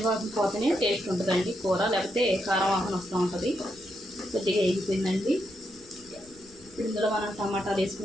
పోతేనే టేస్ట్ ఉంటుందండి కూర, లేకపోతే కారం వాసన వస్తూ ఉంటుంది. కొద్దిగా వేగిపోయిందండి. ఇందులో మనం టమాటాలు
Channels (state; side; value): noise; left; rumble, 26 dB below the sound